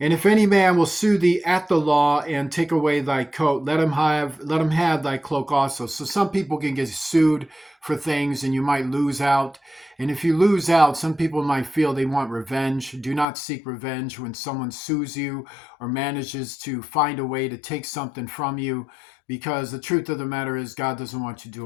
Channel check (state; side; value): drops out; right; at 13.2 s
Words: if any man will sue thee at the law and take away thy coat, let him have thy cloak also. So some people can get sued for things and you might lose out. And if you lose out, some people might feel they want revenge. Do not seek revenge when someone sues you or manages to find a way to take something from you, because the truth of the matter is God doesn't want you